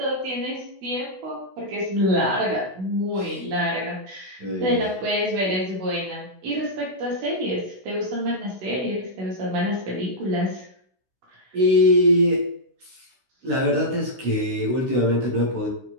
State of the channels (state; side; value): late; left; 16 ms